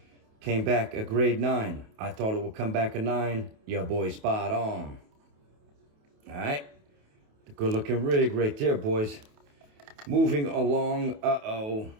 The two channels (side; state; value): left; late; 28 ms